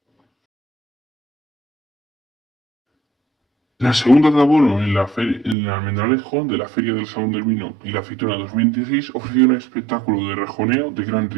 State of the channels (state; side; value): drops out; left; at 5.6 s